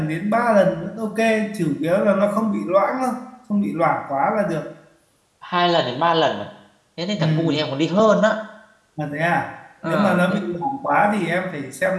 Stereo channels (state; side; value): identical; both; correlation 1.00